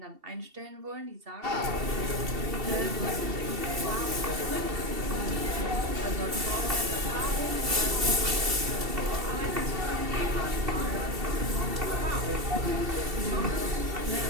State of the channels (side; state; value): left; late; 2.7 ms